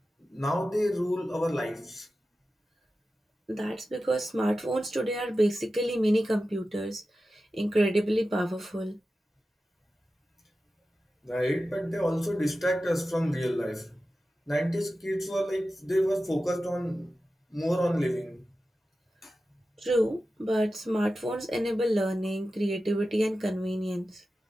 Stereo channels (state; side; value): normal; both; correlation 0.93